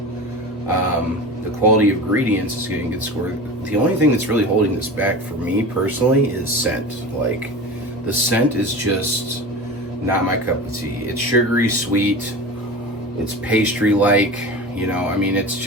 The quality of ingredients is getting a good score. The only thing that's really holding this back for me personally is scent. Like, the scent is just not my cup of tea. It's sugary sweet. It's pastry-like. You know, I mean, it's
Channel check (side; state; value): both; normal; correlation 0.31